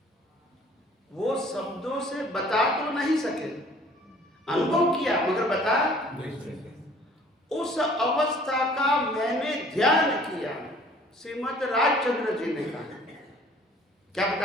वो शब्दों से बता तो नहीं सके, अनुभव किया मगर बता नहीं सके। उस अवस्था का मैंने ध्यान किया, श्रीमद राजचंद्र जी ने कहा। क्या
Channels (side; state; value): both; normal; correlation 0.53